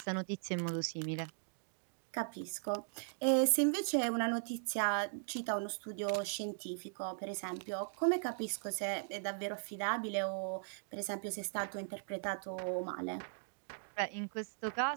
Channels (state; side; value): silent; left; digital silence